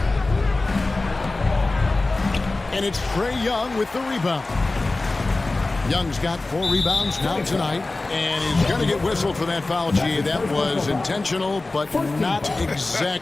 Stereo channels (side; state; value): right; quieter; 3.2 dB